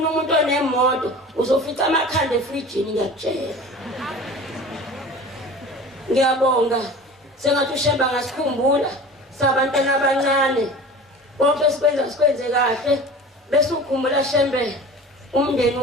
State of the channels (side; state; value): both; normal; correlation 0.38